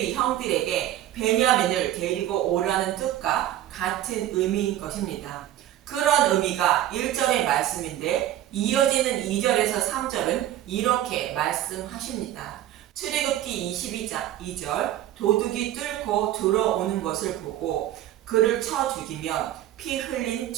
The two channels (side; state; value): left; quieter; 12.8 dB